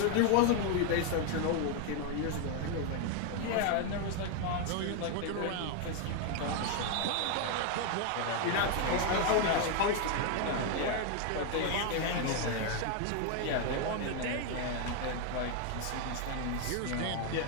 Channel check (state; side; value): different; both; correlation 0.01